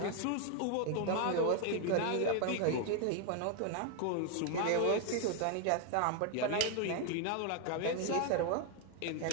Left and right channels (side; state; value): both; different; correlation 0.00